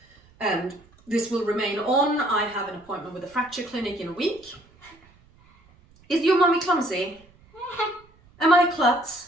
and this will remain on. I have an appointment with a fracture clinic in a week. Is your mummy clumsy? Am I a klutz?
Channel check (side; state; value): right; noise; rumble, 29 dB below the sound